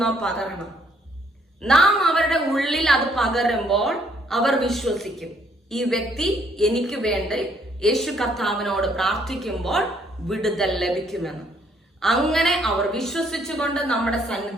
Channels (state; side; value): normal; both; correlation 0.67